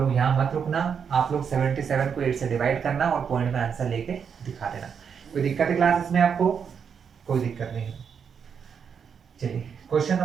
यहाँ मत रुकना, आप लोग 77 को 8 से डिवाइड करना और पॉइंट में आंसर लेके दिखा देना। कोई दिक्कत है क्लास इसमें आपको? कोई दिक्कत नहीं है। चलिए क्वेश्चन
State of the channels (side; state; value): left; quieter; 6.9 dB